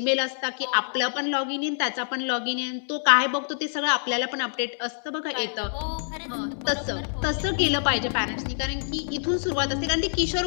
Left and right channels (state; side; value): silent; right; digital silence